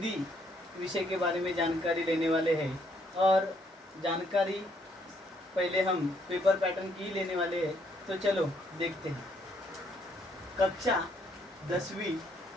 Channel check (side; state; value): both; normal; correlation 0.69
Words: विषय के बारे में जानकारी लेने वाले हैं और जानकारी पहले हम पेपर पैटर्न की लेने वाले हैं। तो चलो देखते हैं। कक्षा 10वीं,